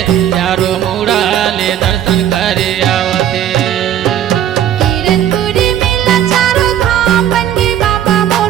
चारों मुड़ाले दर्शन करे आवथे। कीरतपुरी मेला चारों धाम बन के बाबा मोर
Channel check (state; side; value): quieter; left; 10.7 dB